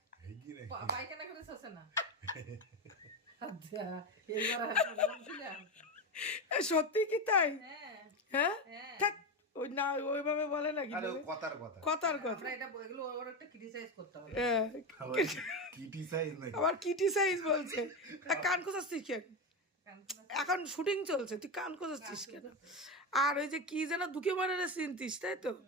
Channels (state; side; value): normal; both; correlation 0.16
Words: পায়খানা করে শোষে না। আচ্ছা, এইবার বলছিলাম। সত্যি কি তাই? হ্যাঁ হ্যাঁ হ্যাঁ। থাক, ওই না ওইভাবে বলে নাকি কথার কথা। কথার কথা। আমরা এটা এগুলো ওর একটা ক্রিটিসাইজ করতে হবে। হ্যাঁ, ক্রিটিসাইজ নাকি? আবার ক্রিটিসাইজ বলছে। কান খোঁচাচ্ছিস কেন? এখন শুটিং চলছে, তুই কান খোঁচাচ্ছিস কেন? আর ওই যে কি যেন দুকে মারারে চিনতিস তাই তো?